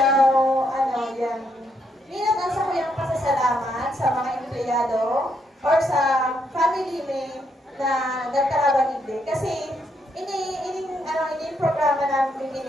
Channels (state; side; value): normal; both; correlation 0.76